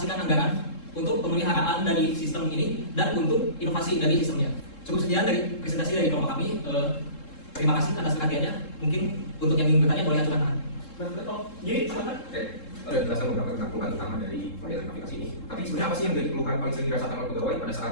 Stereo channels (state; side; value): late; right; 3.7 ms